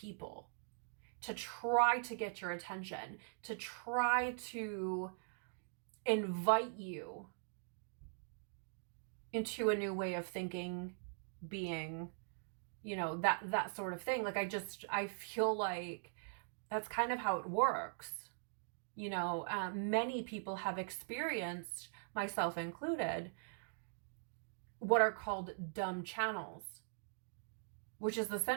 to try to get your attention, to try to invite you into a new way of thinking, being, that sort of thing. Like, I feel like that's kind of how it works. Many people have experienced, myself included, what are called dumb channels, which is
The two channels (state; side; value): silent; left; digital silence